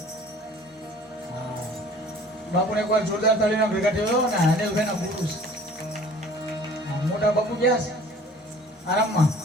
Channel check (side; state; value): both; normal; correlation 0.49